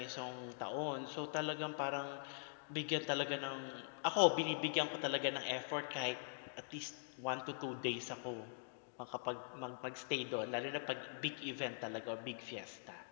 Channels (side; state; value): right; silent; digital silence